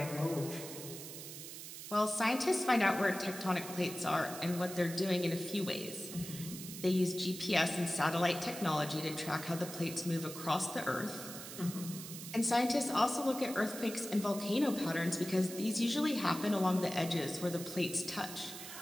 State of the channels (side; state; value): right; noise; hiss, 10 dB below the sound